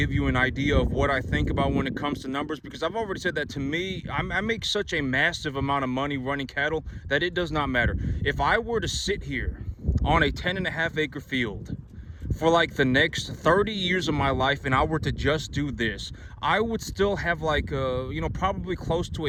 you an idea of what I think about when it comes to numbers, because I've already said that to me, I make such a massive amount of money running cattle that it does not matter. If I were to sit here on a 10.5 acre field for like the next 30 years of my life and I were to just do this, I would still have like, probably close to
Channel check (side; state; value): both; identical; correlation 1.00